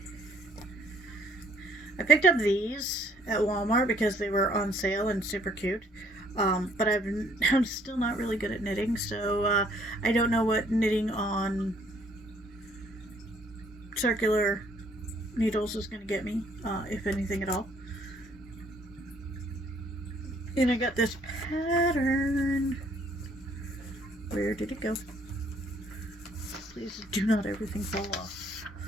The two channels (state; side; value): normal; both; correlation 0.62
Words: picked up these at Walmart because they were on sale and super cute. But I'm still not really good at knitting, so I don't know what knitting on circular needles is going to get me, if anything at all. And I got this pattern. Where did it go? Please do not everything fall off.